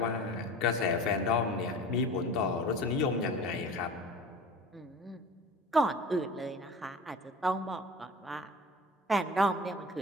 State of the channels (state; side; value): normal; both; correlation 0.38